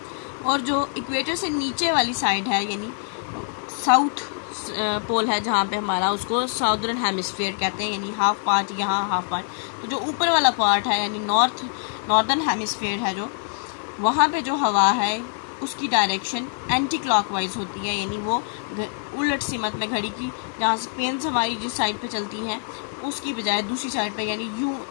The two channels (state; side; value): silent; right; 59 dB below the other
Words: और जो इक्वेटर से नीचे वाली साइड है, यानी साउथ पोल है जहाँ पे हमारा, उसको साउदर्न हेमिस्फेयर कहते हैं, यानी हाफ पार्ट यहाँ, हाफ पार्ट। तो जो ऊपर वाला पार्ट है यानी नॉर्दर्न हेमिस्फेयर है, जो वहाँ पे जो हवा है उसकी डायरेक्शन एंटी क्लॉकवाइज होती है, यानी वो उलट सिमत में घड़ी की, जहाँ से पेन्स हमारी जिस साइड पे चलती हैं उसकी बजाय दूसरी साइड पे, यानी यूँ